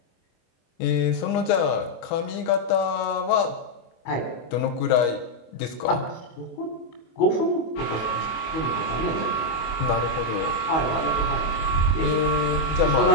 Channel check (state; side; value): late; right; 25 ms